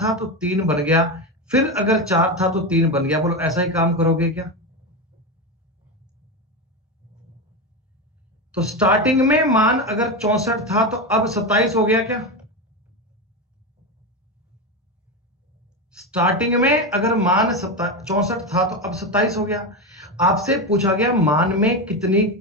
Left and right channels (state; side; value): normal; both; correlation 0.16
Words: था तो 3 बन गया, फिर अगर 4 था तो 3 बन गया। बोलो ऐसा ही काम करोगे क्या? तो स्टार्टिंग में मान अगर 64 था तो अब 27 हो गया क्या? स्टार्टिंग में अगर मान 64 था तो अब 27 हो गया। आपसे पूछा गया मान में कितनी